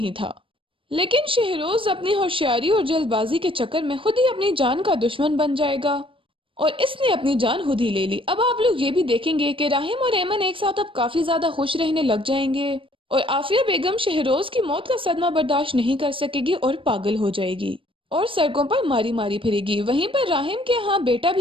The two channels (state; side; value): late; left; 0.25 ms